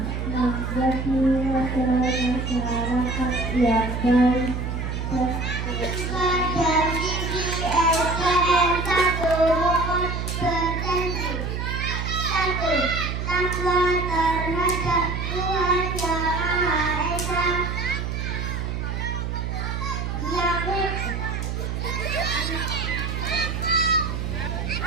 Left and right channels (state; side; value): noise; right; hum, 3 dB below the sound